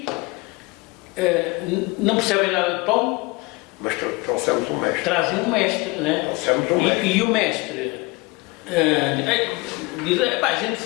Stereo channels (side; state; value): right; quieter; 24.8 dB